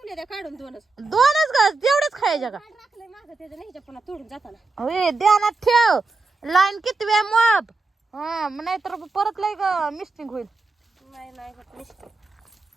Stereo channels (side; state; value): left; quieter; 3.7 dB